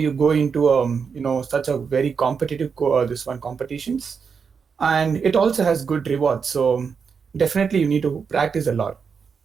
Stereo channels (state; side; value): quieter; left; 6.0 dB